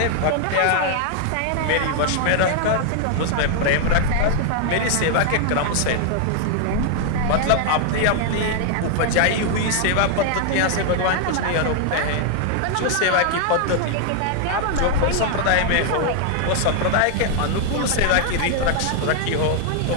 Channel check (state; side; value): different; both; correlation 0.00